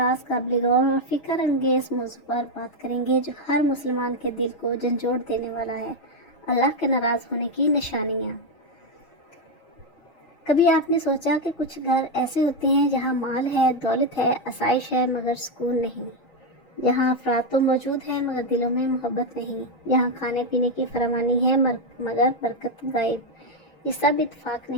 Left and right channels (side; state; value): right; late; 6.3 ms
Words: قابل غور اور فکر انگیز موضوع پر بات کریں گے جو ہر مسلمان کے دل کو جھنجھوڑ دینے والا ہے، اللہ کے ناراض ہونے کی نشانیاں۔ کبھی آپ نے سوچا کہ کچھ گھر ایسے ہوتے ہیں جہاں مال ہے، دولت ہے، آسائش ہے، مگر سکون نہیں، جہاں افراد تو موجود ہیں مگر دلوں میں محبت نہیں، جہاں کھانے پینے کی فراوانی ہے مگر برکت غائب۔ یہ سب اتفاق